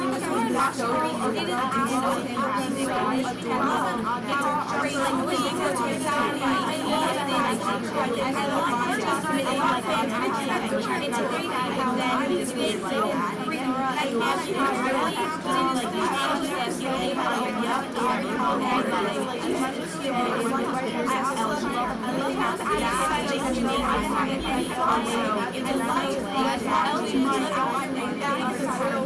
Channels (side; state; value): both; identical; correlation 1.00